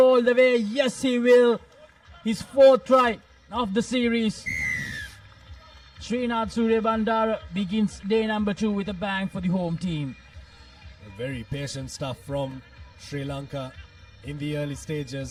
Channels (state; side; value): identical; both; correlation 1.00